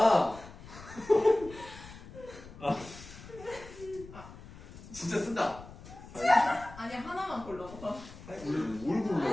진짜 쓴다. 아니 하나만 골라봐. 뭘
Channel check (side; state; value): left; noise; rumble, 16 dB below the sound